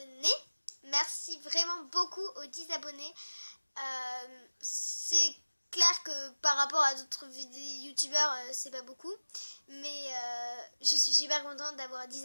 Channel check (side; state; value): both; inverted; correlation -1.00